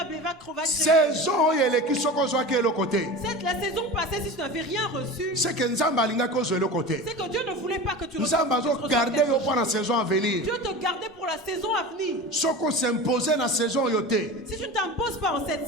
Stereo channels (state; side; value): normal; both; correlation 0.31